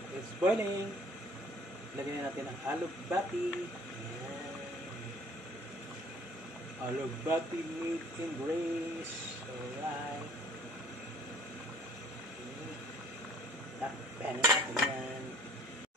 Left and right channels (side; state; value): both; normal; correlation 0.53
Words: It's boiling. Lagyan natin ang alugbati. Alugbati made in Grace. Alright. Takpan natin yan.